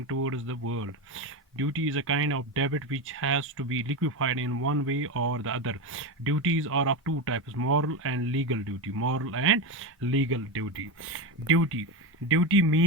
towards the world. Duty is a kind of debt which has to be liquefied in one way or the other. Duties are of two types: moral and legal duty. Moral and legal duty. Duty. Duty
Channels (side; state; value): both; normal; correlation 0.16